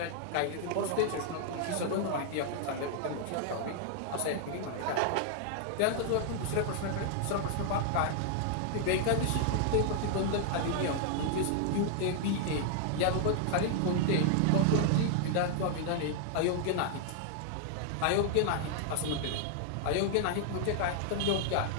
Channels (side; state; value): both; different; correlation 0.00